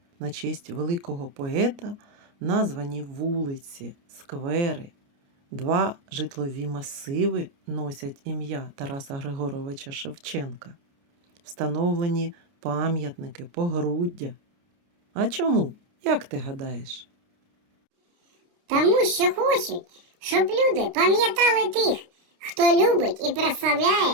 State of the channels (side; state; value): left; late; 29 ms